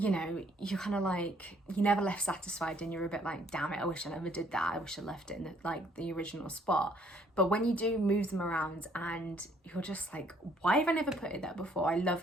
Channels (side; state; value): both; normal; correlation 0.64